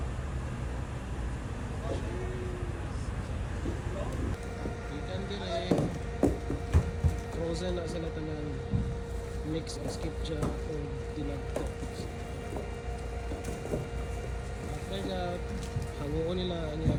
Ikan dire. Frozen na sila tanan. Mix o skipja o dinagto. After that, hanguon nila niya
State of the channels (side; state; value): both; identical; correlation 1.00